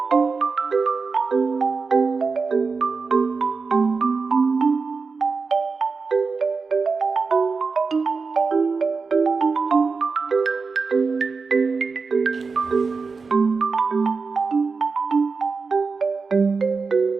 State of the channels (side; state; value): left; quieter; 4.6 dB